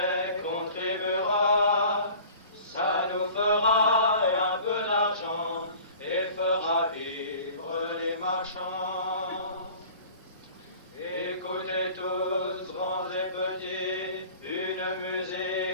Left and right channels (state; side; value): inverted; both; correlation -0.45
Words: contribuera. Ça nous fera un peu d'argent et fera vivre les marchands. Écoutez tous, grands et petits, une